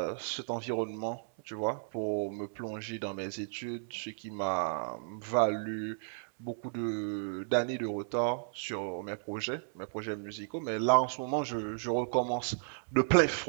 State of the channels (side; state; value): left; silent; digital silence